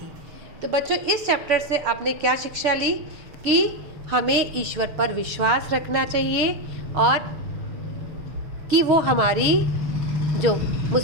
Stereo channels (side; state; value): left; late; 6.6 ms